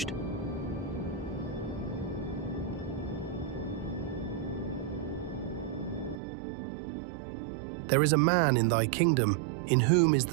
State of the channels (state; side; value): drops out; left; at 6.2 s